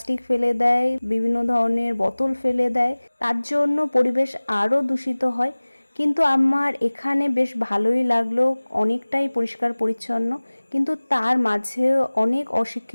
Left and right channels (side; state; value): both; inverted; correlation -1.00